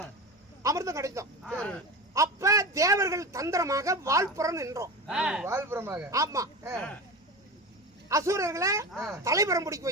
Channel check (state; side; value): normal; both; correlation 0.27